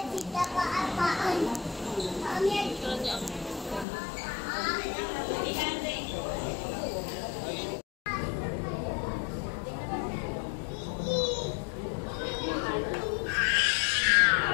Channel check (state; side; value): drops out; right; at 3.9 s